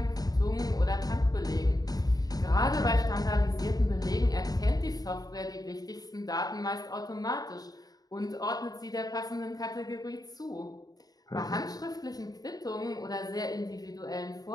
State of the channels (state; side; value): late; right; 0.18 ms